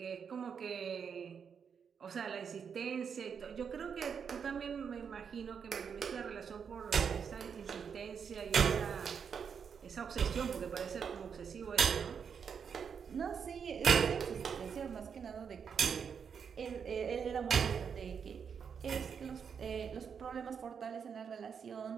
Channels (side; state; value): left; quieter; 6.8 dB